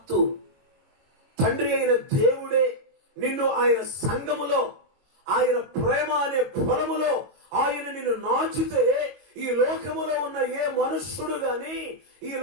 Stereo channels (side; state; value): left; late; 22 ms